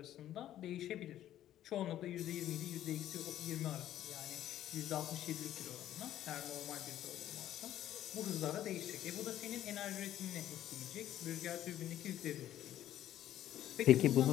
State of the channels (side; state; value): right; quieter; 12.4 dB